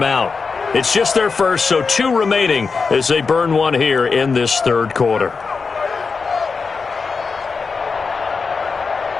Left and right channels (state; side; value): quieter; right; 4.8 dB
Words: It's just their first, so 2 remaining as they burn one here in this third quarter.